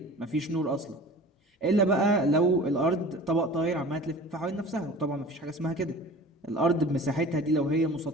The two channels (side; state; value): both; normal; correlation 0.41